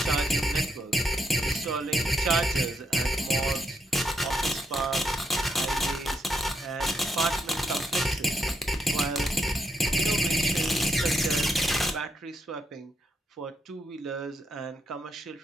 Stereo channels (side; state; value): both; normal; correlation 0.79